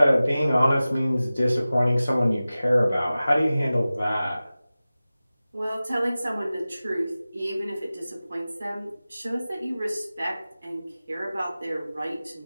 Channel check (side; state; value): both; inverted; correlation -0.96